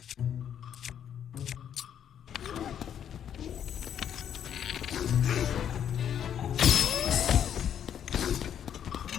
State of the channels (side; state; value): right; quieter; 9.2 dB